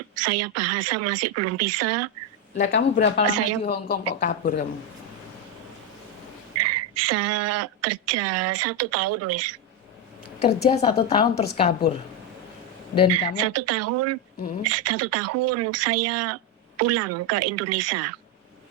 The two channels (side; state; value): both; normal; correlation 0.05